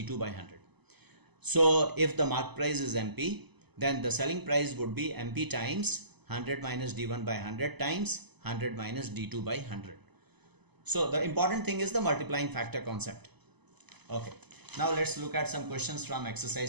by 100. So if the marked price is MP, then the selling price would be MP times 100 minus D1 by 100 times 100 minus D2 by 100. So the important thing is the multiplying factor concept. Okay. Now let's look at some questions from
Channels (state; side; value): late; left; 0.99 ms